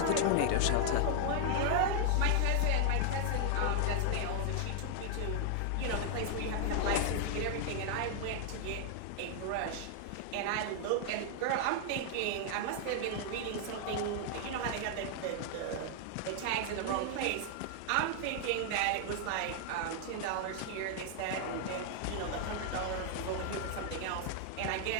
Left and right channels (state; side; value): different; both; correlation 0.00